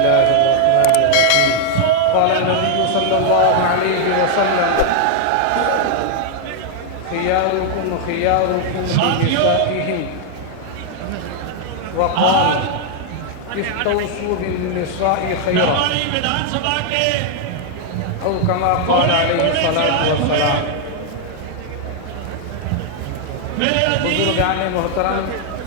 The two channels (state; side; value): different; both; correlation -0.01